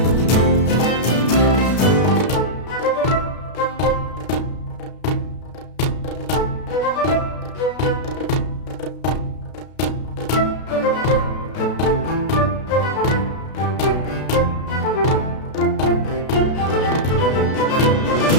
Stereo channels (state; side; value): late; right; 32 ms